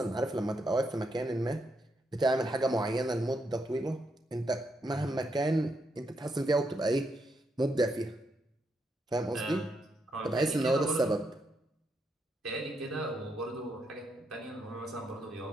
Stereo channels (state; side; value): normal; both; correlation 0.80